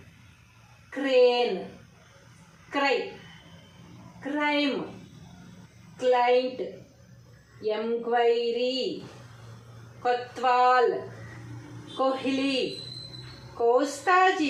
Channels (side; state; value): both; identical; correlation 1.00